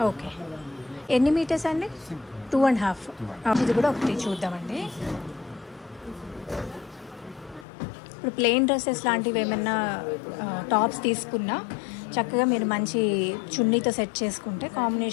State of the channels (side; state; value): right; drops out; at 7.7 s